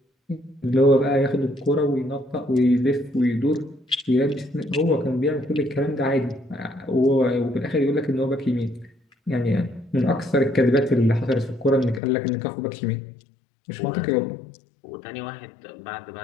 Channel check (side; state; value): right; drops out; at 12.0 s